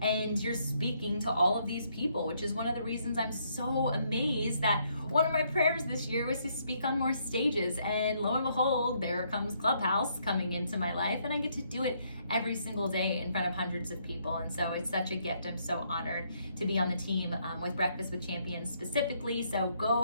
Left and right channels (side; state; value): both; inverted; correlation -0.71